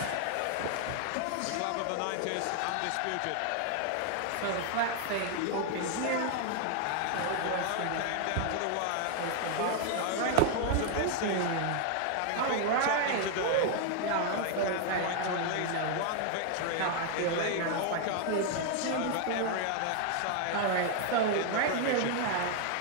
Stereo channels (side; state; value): both; different; correlation 0.00